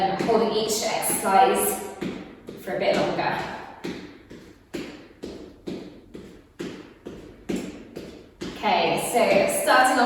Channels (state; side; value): identical; both; correlation 1.00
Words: each exercise for a bit longer. Okay, so starting